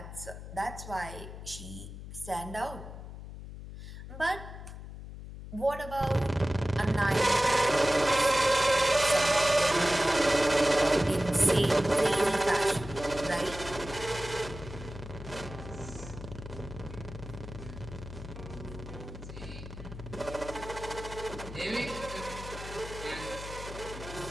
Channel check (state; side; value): noise; left; hum, 11 dB below the sound